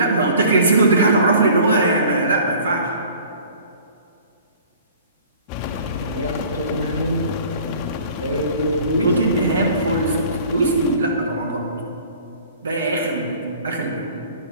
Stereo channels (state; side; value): inverted; both; correlation -0.49